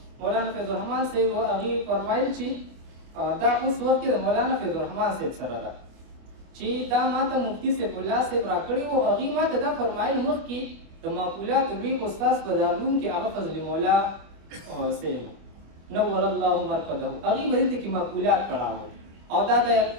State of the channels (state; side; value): late; left; 25 ms